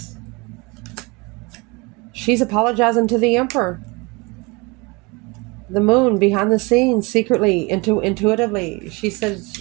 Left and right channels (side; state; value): left; quieter; 26.7 dB